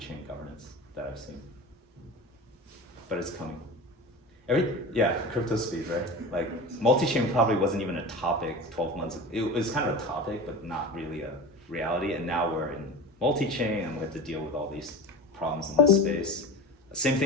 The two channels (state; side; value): normal; both; correlation 0.31